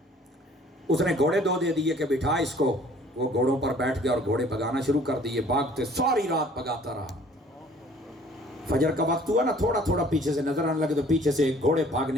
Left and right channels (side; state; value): both; normal; correlation 0.54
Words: اس نے گھوڑے دو دے دیے کہ بٹھا اس کو. وہ گھوڑوں پر بیٹھ گیا اور گھوڑے بھگانا شروع کر دیے. بھاگتے ساری رات بھگاتا رہا. فجر کا وقت ہوا نا, تھوڑا تھوڑا پیچھے سے نظر آنے لگے تو پیچھے سے گھوڑے